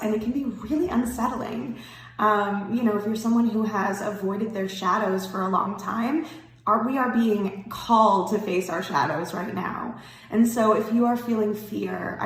and it can be really unsettling. If you're someone who has avoided their shadows for a long time, we are being called to face our shadows right now. And so if you are feeling fear,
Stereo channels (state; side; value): identical; both; correlation 1.00